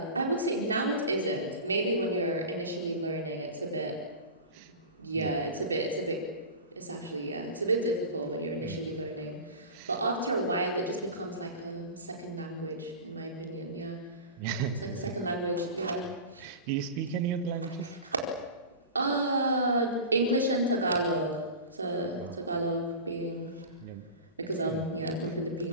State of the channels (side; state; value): both; inverted; correlation -0.31